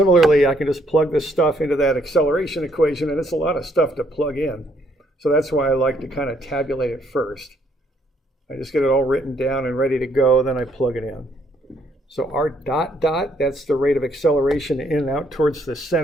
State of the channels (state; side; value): normal; both; correlation 0.69